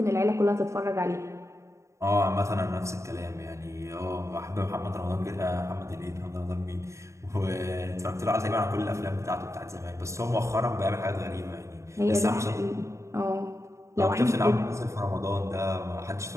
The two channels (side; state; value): left; late; 0.14 ms